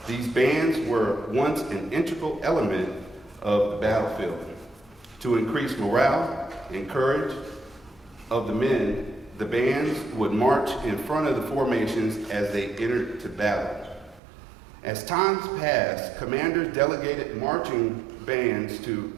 These bands were once an integral element of the battlefield. To increase morale and courage of the men, the bands would march in front of the formations as they entered to battle. As times passed, commanders delegated marching bands to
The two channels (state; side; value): drops out; left; at 14.2 s